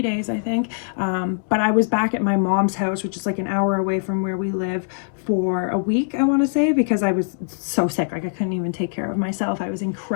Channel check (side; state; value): right; silent; digital silence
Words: days, I think. But I was back at my mom's house, which is like an hour away from where we live, for a week, I want to say, because I was so sick. Like I couldn't even take care of myself. I was